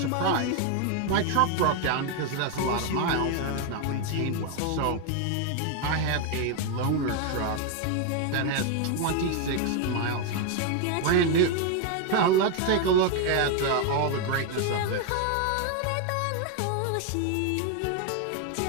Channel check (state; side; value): different; both; correlation 0.01